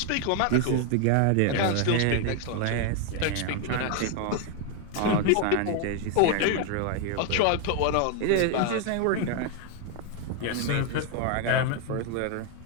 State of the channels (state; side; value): different; both; correlation 0.01